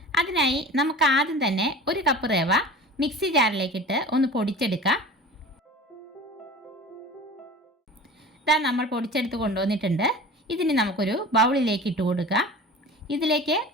അതിനായി നമുക്ക് ആദ്യം തന്നെ ഒരു കപ്പ് റവ മിക്സി ജാറിലേക്കിട്ട് ഒന്ന് പൊടിച്ചെടുക്കാം. ഇതാ നമ്മൾ പൊടിച്ചെടുത്ത് കൊണ്ടുവന്നിട്ടുണ്ട്. ഇതിന് നമുക്കൊരു ബൗളിലേക്ക് ഇട്ട് കൊടുക്കാം. ഇതിലേക്ക്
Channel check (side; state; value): both; normal; correlation 0.37